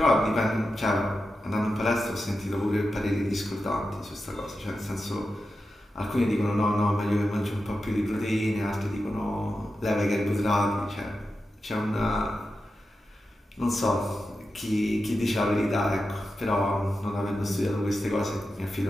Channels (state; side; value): normal; both; correlation 0.90